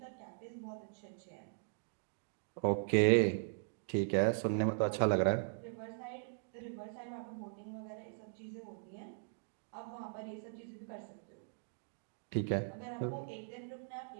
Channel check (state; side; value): silent; left; digital silence